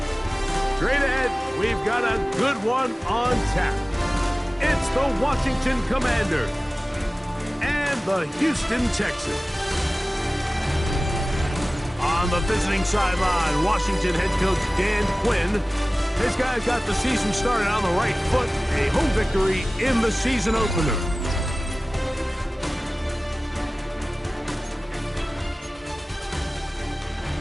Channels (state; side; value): normal; both; correlation 0.97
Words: Straight ahead, we've got a good one on tap. It's the Washington Commanders and the Houston Texans. On the visiting sideline, Washington head coach Dan Quinn. His guys got the season started on the right foot, a home victory in the season opener.